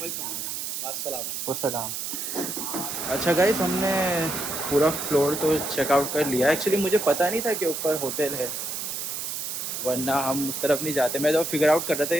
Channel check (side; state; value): right; noise; hiss, 4 dB below the sound